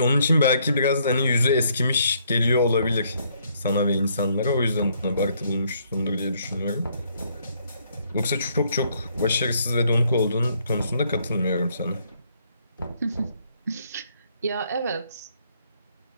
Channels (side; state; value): both; inverted; correlation -0.69